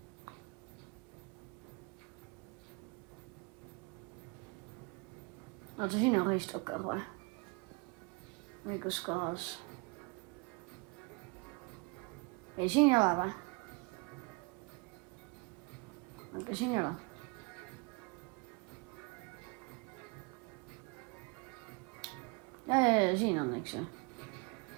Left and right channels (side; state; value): left; quieter; 28.5 dB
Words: Oota, siin on reistokker või? Õigus kohas. Ei, siin ei ole või? Aga siin ei ole. Ja, siin on, eks ju.